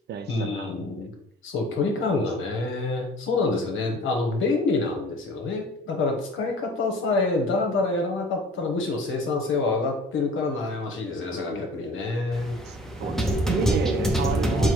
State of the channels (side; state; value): both; normal; correlation 0.47